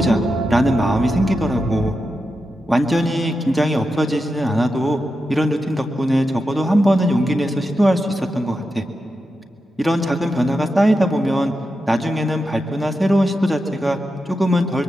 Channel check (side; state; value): both; normal; correlation 0.88